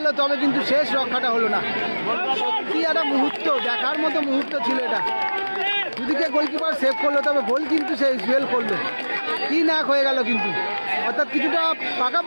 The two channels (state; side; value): inverted; both; correlation -1.00